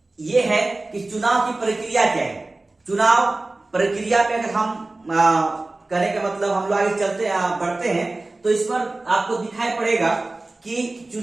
ये है कि चुनाव की प्रक्रिया क्या है। चुनाव प्रक्रिया पे अगर हम करने का मतलब हम लोग आगे बढ़ते हैं तो इस पर आपको दिखाई पड़ेगा कि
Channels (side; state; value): left; quieter; 3.0 dB